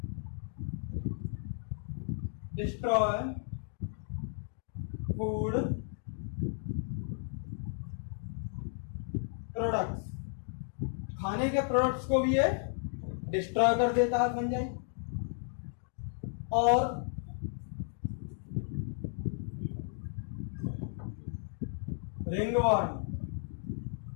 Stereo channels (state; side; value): silent; right; 55 dB below the other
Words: डिस्ट्रॉय फूड प्रोडक्ट्स। खाने के प्रोडक्ट्स को भी ये डिस्ट्रॉय कर देता है फंजाई। और ringworm